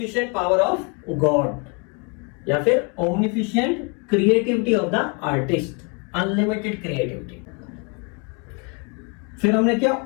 power of God, या फिर omnificent creativity of the artist, unlimited creativity. फिर हमने क्या,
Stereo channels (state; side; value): quieter; right; 34.7 dB